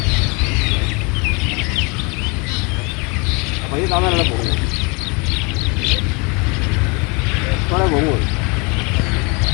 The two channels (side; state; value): right; quieter; 30.4 dB